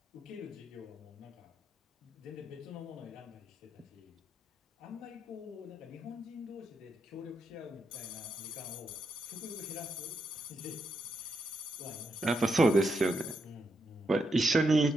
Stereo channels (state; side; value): normal; both; correlation 0.82